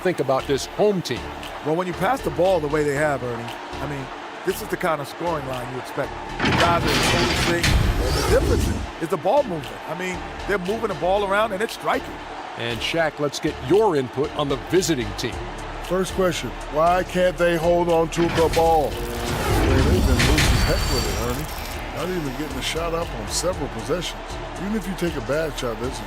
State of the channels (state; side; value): identical; both; correlation 1.00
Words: about this home team? Well, when you pass the ball the way they have, Ernie, I mean, this is the kind of scoring line you expect. The guys are in total sync. The difference is the ball movement. I mean, they're moving the ball around and it's striking. And Shaq, let's get your input on the visiting team. First question, why can't they hold on to the ball? They've been loose as heck with it, Ernie. Not even getting a shot up on several possessions. Even if you take a bad shot, there's